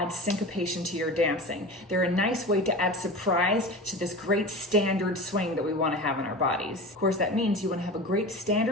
syncopation to your dancing. They're a nice way to add surprise to this great standard swing that we want to have in our bodies. Of course, that means you want to have a great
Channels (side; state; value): both; normal; correlation 0.31